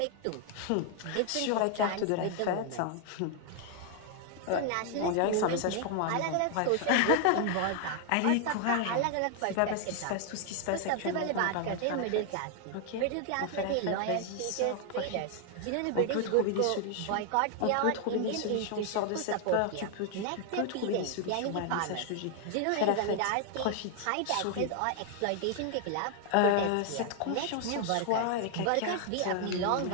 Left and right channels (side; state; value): both; different; correlation 0.00